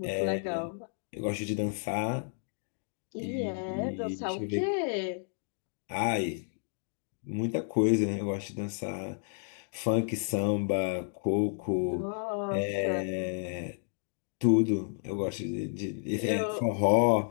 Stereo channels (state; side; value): silent; right; digital silence